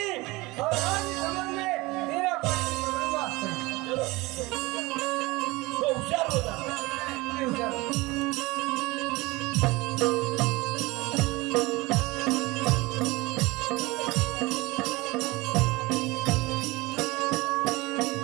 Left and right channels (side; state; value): left; quieter; 22.2 dB